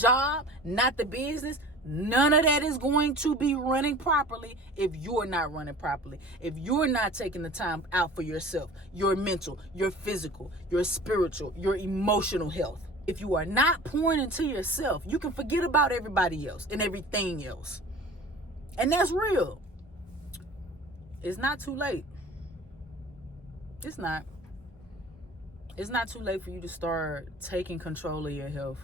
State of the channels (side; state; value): both; normal; correlation 0.42